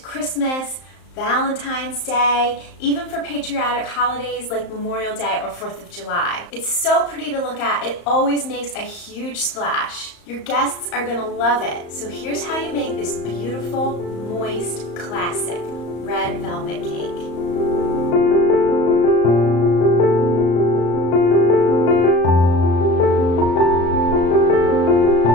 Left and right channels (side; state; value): right; late; 34 ms